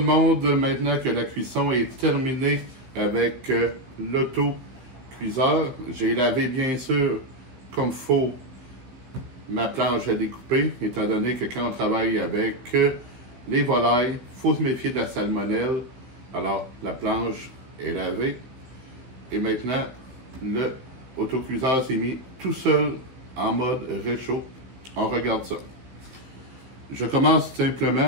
monde. Maintenant que la cuisson est terminée avec l'auto-cuiseur, j'ai lavé bien sûr comme il faut ma planche à découper, étant donné que quand on travaille avec les volailles, il faut se méfier de la salmonelle. Alors, la planche est lavée. Et maintenant, le autocuiseur s'est mis tout seul en mode réchaud. On regarde ça. Je commence simplement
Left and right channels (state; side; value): late; left; 16 ms